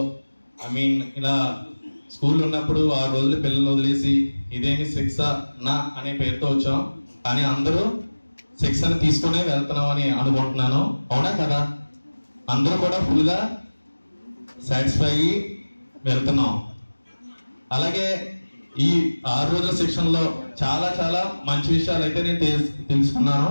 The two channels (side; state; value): both; inverted; correlation -1.00